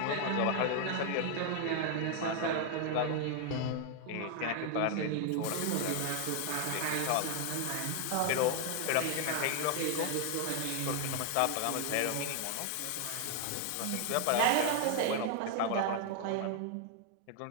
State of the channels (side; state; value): both; different; correlation 0.00